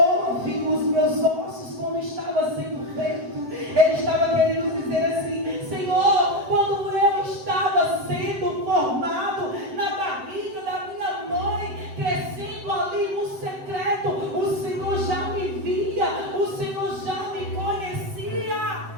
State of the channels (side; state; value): left; late; 7.8 ms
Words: viu os meus ossos quando estava sendo feito. Ele estava querendo dizer assim: Senhor, quando eu estava sendo formado na barriga da minha mãe, crescendo ali no secreto, o Senhor já me via, o Senhor já me conhecia.